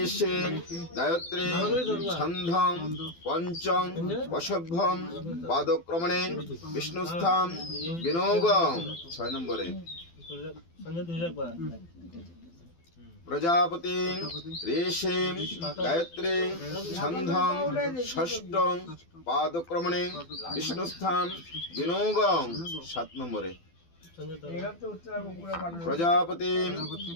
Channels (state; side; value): late; right; 12 ms